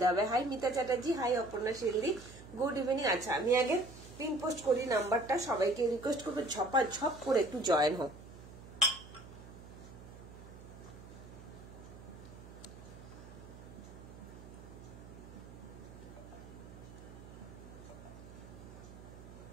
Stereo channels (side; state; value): right; noise; hum, 16 dB below the sound